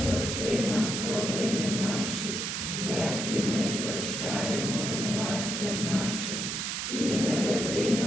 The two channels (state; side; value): noise; right; hiss, 2 dB below the sound